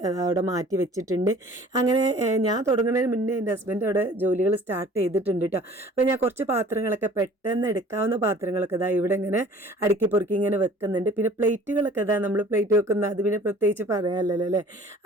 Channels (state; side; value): normal; both; correlation 0.49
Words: അവിടെ മാറ്റി വെച്ചിട്ടുണ്ട്. അങ്ങനെ ഞാൻ തുടങ്ങുന്നതിന് മുന്നേ എൻ്റെ ഹസ്ബൻഡ് അവിടെ ജോലികൾ സ്റ്റാർട്ട് ചെയ്തിട്ടുണ്ട് കേട്ടോ. അപ്പോൾ ഞാൻ കുറച്ച് പാത്രങ്ങളൊക്കെ പെട്ടെന്ന് എടുക്കാവുന്ന പാത്രങ്ങളൊക്കെ ഇതാ ഇവിടെ ഇങ്ങനെ അടുക്കി പൊറുക്കി ഇങ്ങനെ വെക്കുന്നുണ്ട്. പിന്നെ പ്ലേറ്റുകളൊക്കെ ഇതാ നമ്മൾ പ്ലേറ്റ് വെക്കുന്ന അത് പിന്നെ പ്രത്യേകിച്ച് പറയാമല്ലോ അല്ലേ,